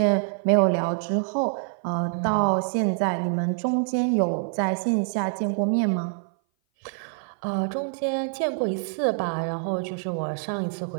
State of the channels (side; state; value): left; silent; 58 dB below the other